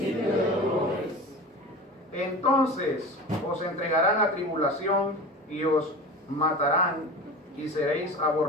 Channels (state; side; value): normal; both; correlation 0.32